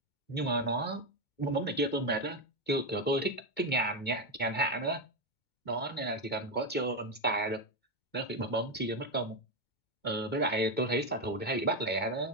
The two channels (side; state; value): right; late; 2.2 ms